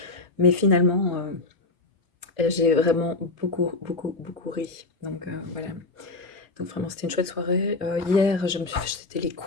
mais finalement j'ai vraiment beaucoup ri. Donc voilà. Donc vraiment c'était une chouette soirée. Hier c'était les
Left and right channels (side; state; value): right; quieter; 3.2 dB